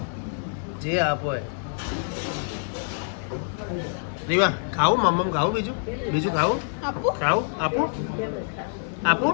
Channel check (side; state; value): right; silent; digital silence